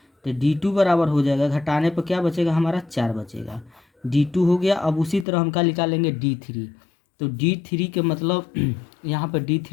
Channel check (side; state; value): right; drops out; at 5.2 s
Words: तो D2 बराबर हो जाएगा, घटाने पर क्या बचेगा हमारा 4 बचेगा। D2 हो गया। अब उसी तरह हम क्या निकालेंगे D3। तो D3 के मतलब यहाँ पर